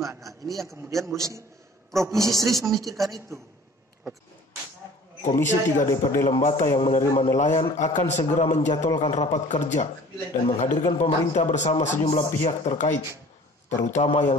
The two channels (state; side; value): normal; both; correlation 0.48